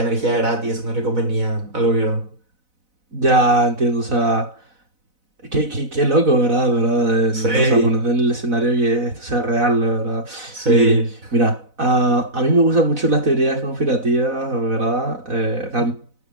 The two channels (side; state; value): left; late; 4.0 ms